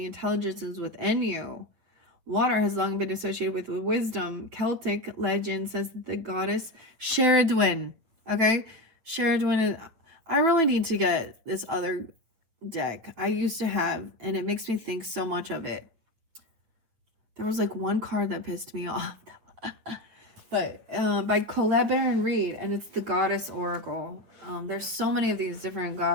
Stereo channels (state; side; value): late; left; 9.1 ms